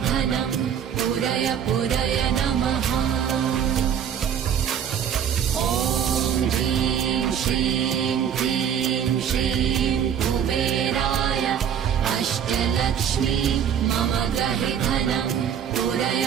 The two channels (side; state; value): left; quieter; 8.5 dB